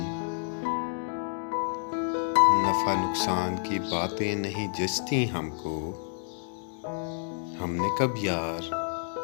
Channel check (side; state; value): right; silent; digital silence